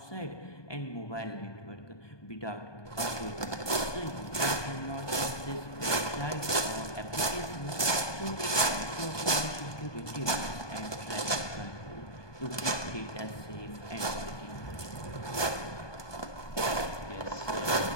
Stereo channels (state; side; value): late; right; 1.2 ms